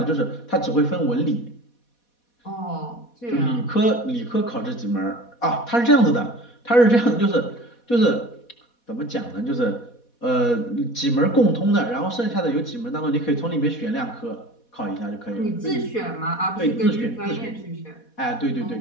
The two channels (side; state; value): right; late; 4.2 ms